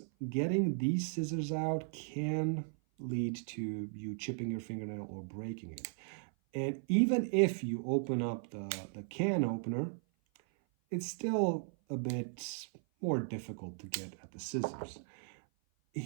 getting these scissors out can lead to you chipping your fingernail or breaking it. And even if you open up the can opener, it's still a bit more difficult to get at the scissors.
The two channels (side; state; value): left; silent; 53 dB below the other